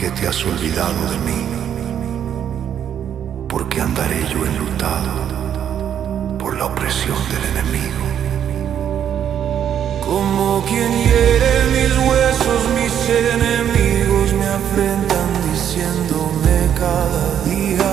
te has olvidado de mí? ¿Por qué andaré yo enlutado por la opresión del enemigo? Como quien hiere mis huesos, mis enemigos me afrentan diciéndome cada día:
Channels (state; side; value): quieter; left; 9.3 dB